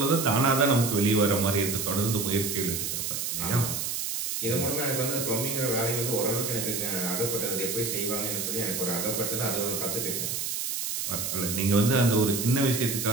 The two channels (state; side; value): noise; right; hiss, 2 dB below the sound